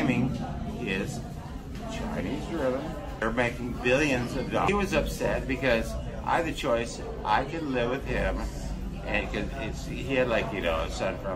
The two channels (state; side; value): identical; both; correlation 1.00